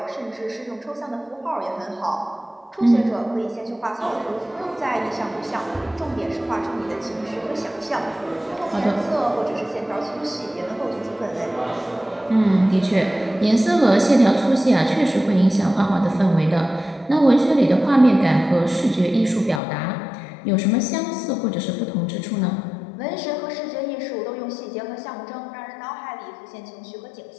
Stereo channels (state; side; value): drops out; right; at 19.6 s